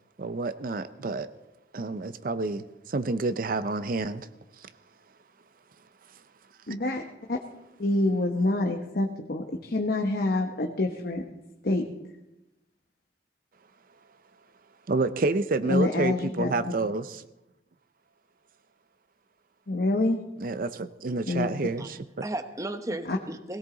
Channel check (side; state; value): both; normal; correlation 0.49